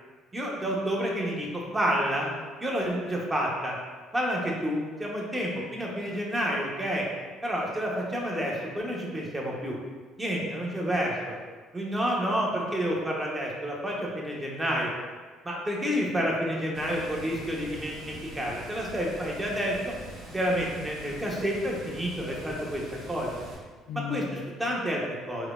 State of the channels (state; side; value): normal; both; correlation 0.71